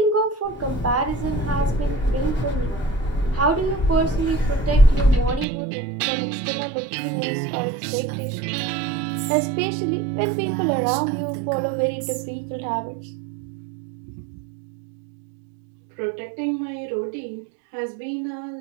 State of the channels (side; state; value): left; drops out; at 5.5 s